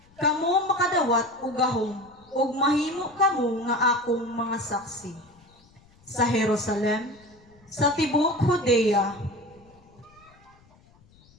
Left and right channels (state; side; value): noise; left; rumble, 29 dB below the sound